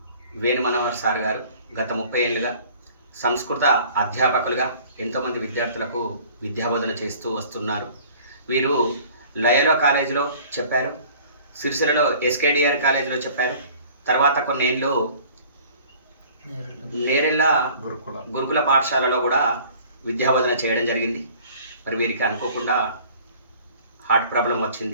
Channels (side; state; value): both; inverted; correlation -0.50